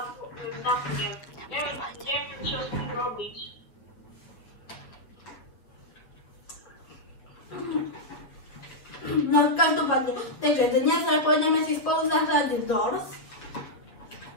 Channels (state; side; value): late; right; 7.3 ms